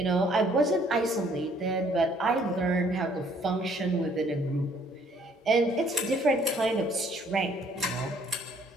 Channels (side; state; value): both; normal; correlation 0.62